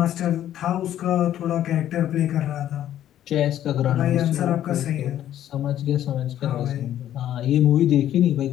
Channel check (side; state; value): right; quieter; 11.7 dB